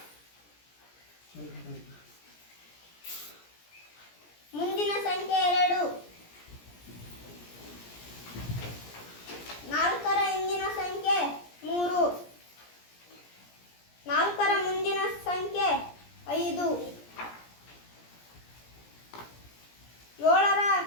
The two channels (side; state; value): right; late; 17 ms